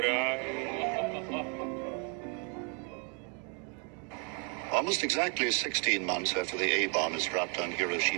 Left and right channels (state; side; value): quieter; left; 37.3 dB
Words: Almost exactly 16 months after the A-bomb is dropped on